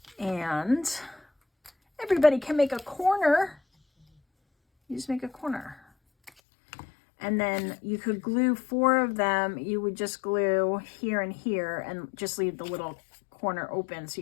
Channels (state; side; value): drops out; right; at 6.3 s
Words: and everybody can make a corner. You just make a corner. And then you could glue 4 of them. You would just glue here and here and just leave the little corner open so